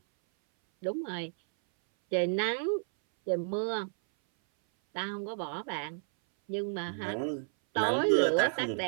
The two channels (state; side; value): silent; left; 57 dB below the other